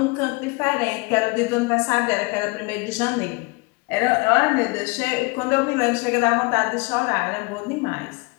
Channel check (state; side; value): quieter; right; 27.3 dB